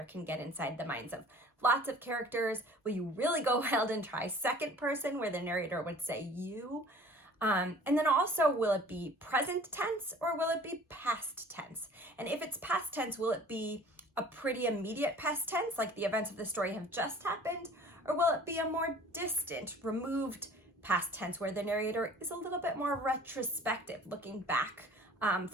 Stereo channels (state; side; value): normal; both; correlation 0.48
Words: can get inside the minds of lots of characters? Will you really go wild and try second person where the narrator would say you? And then also, will it be present tense or will it be past tense? And if it's past tense, will it be a pretty immediate past tense, like the events of the story have just happened? Or will it be a more distant, removed past tense where the narrator is a little bit more retrospective, looking back